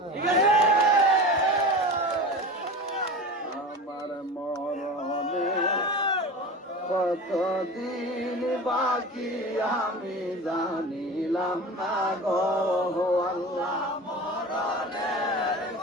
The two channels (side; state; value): both; normal; correlation 0.31